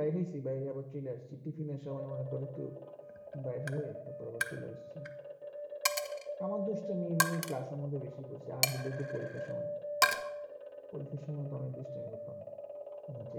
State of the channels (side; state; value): both; identical; correlation 1.00